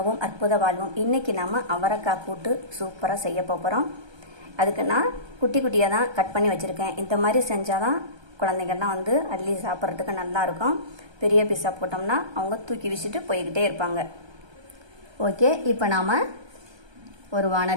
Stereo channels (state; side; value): late; left; 1.3 ms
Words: அற்புத வாழ்வும். இன்றைக்கி நம்ம அவரைக்காய் கூட்டு சூப்பராக செய்ய போகிறோம். அதுக்கு நான் குட்டி குட்டியாக தான் கட் பண்ணி வச்சுருக்கேன். இந்த மாதிரி செஞ்சால் தான் குழந்தைங்கள்லாம் அள்ளி சாப்பிட்றதுக்கு நல்லாயிருக்கும். பெரிய பீஸாக போட்டோம்னா அவங்க தூக்கி வீசிட்டு போய்கிட்டே இருப்பாங்க. ஓகே, இப்போ நாம் ஒரு